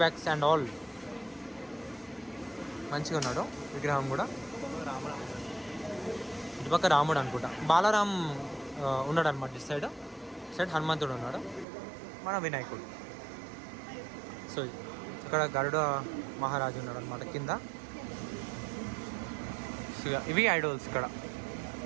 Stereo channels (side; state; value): left; drops out; at 11.7 s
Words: అండ్ ఆల్ మంచిగా ఉన్నాడు విగ్రహం కూడా. ఇటుపక్క రాముడు అనుకుంటా, బాలరామ్ ఉన్నాడు అనమాట. ఇటు సైడ్ హనుమంతుడు ఉన్నాడు, మన వినాయకుడు. సో ఇక్కడ గరుడ మహారాజు ఉన్నాడు అనమాట కింద. ఇవి ఐడల్స్ ఇక్కడ